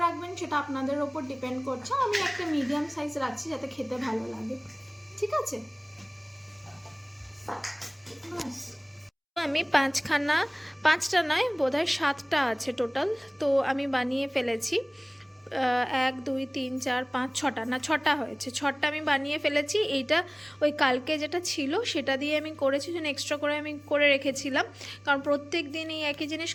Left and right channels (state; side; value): identical; both; correlation 1.00